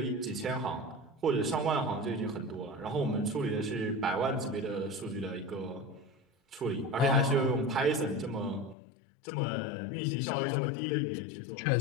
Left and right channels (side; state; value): right; drops out; at 8.8 s